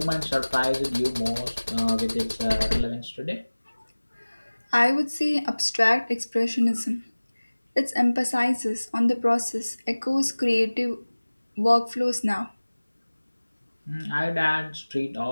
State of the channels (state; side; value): inverted; both; correlation -1.00